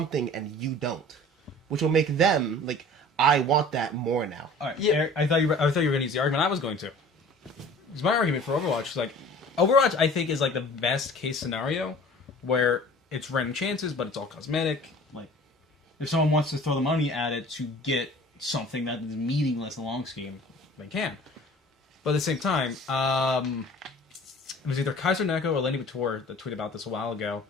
and you don't. Which will make them, like, I want that more now. All right. Yeah. Eric, I thought you were going to use the argument I was going to. Because my argument for Overwatch is like, Overwatch I think is like the best case scenario where it's random chances, but it's all cosmetic. Like, if someone wants to throw the money at it to get something that is meaningless in the long scheme, they can. But at the same time, it was either Kaiser Neko or Lenny Bator that tweeted about this a while ago.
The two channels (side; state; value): both; normal; correlation 0.46